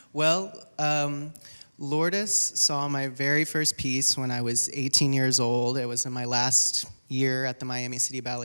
Well, Lourdes saw my very first piece when I was 18 years old. It was in my last year at the Miami City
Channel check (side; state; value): both; inverted; correlation -1.00